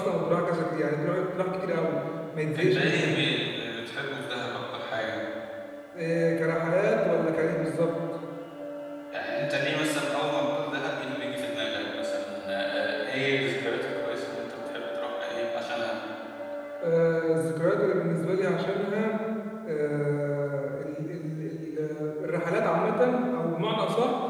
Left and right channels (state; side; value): identical; both; correlation 1.00